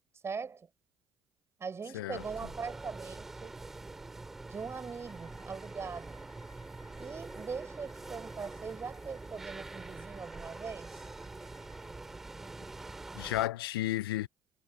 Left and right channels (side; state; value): both; normal; correlation 0.40